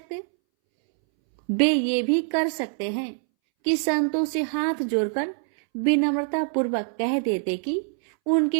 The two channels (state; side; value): silent; left; 62 dB below the other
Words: वे ये भी कर सकते हैं कि संतों से हाथ जोड़कर विनम्रता पूर्वक कह देते कि